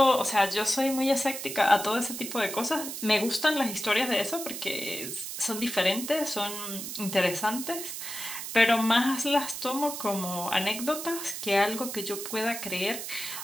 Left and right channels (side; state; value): right; noise; hiss, 7 dB below the sound